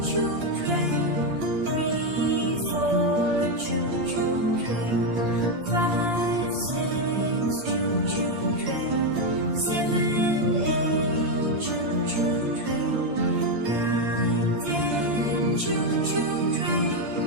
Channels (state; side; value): late; left; 8.7 ms